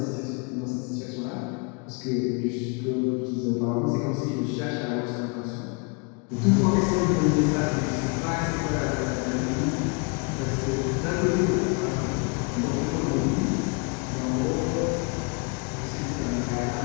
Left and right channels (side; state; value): right; quieter; 33.5 dB